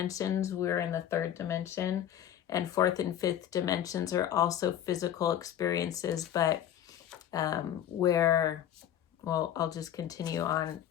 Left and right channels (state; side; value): quieter; right; 10.6 dB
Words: we're in the third dimension, and fourth and fifth dimensions are also physical experiences, but I'll just continue on